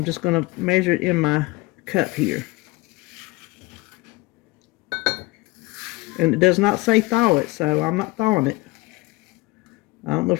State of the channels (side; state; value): right; quieter; 22.5 dB